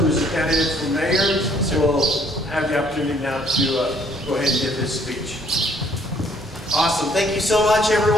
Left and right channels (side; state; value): both; normal; correlation 0.63